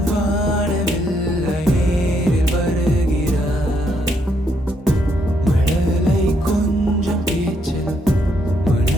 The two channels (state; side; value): normal; both; correlation 0.74